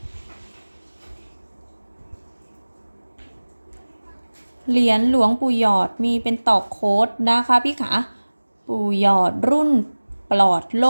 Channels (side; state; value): both; inverted; correlation -1.00